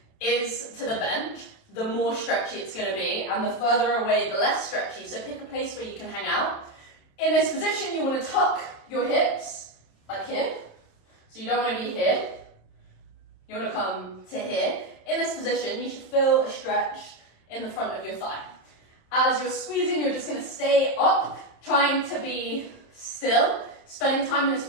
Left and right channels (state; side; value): late; right; 27 ms